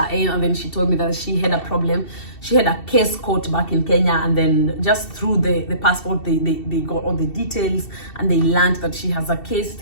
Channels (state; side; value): late; right; 2.7 ms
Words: in, and then she told me that she had a problem. She had a case caught back in Kenya, and then just through the passport, they got all the details, and they learned that she has a case